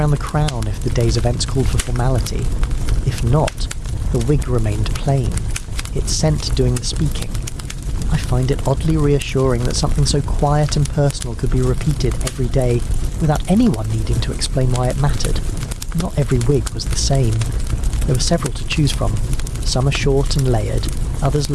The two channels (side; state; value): both; identical; correlation 1.00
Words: the crown if the day's events called for formality. If not, the wig remained plain, its scent doing the speaking. I find it oddly reassuring that something so quiet and personal could be repeated every day without anyone needing to explain why it mattered. Not every wig was the same. There were several to choose from. Some are short and layered, others